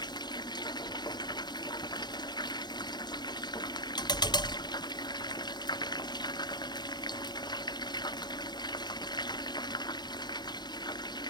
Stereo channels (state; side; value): late; right; 0.21 ms